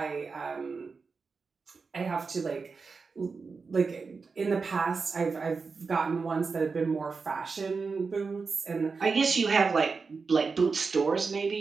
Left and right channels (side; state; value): left; quieter; 4.7 dB